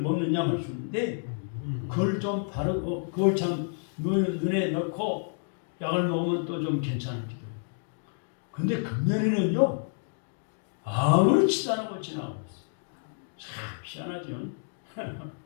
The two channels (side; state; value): right; silent; digital silence